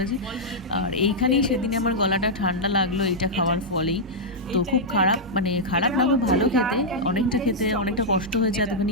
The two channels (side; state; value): both; normal; correlation -0.07